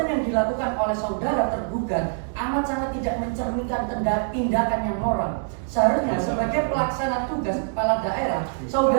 yang dilakukan oleh saudara tergugat amat sangat tidak mencerminkan tindakan yang moral. Seharusnya sebagai pelaksana tugas kepala daerah,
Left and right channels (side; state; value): left; silent; 62 dB below the other